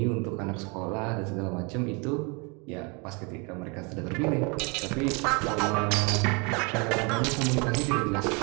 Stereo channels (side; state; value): left; quieter; 30.9 dB